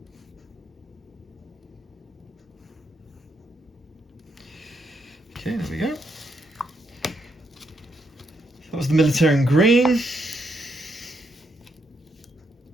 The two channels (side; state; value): both; normal; correlation 0.78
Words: Okay, there we go. That was the Militarium green.